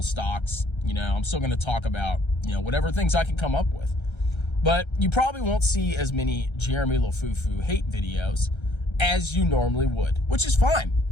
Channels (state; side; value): late; right; 1.3 ms